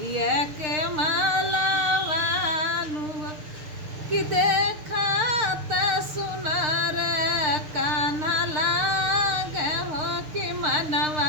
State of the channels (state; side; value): late; left; 6.6 ms